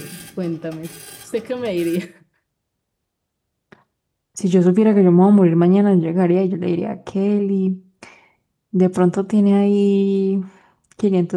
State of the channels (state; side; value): identical; both; correlation 1.00